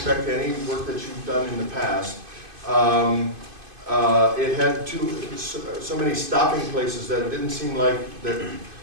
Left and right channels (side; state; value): left; late; 2.5 ms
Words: to any work that you've done in the past, it had so many stopping places that it didn't seem like that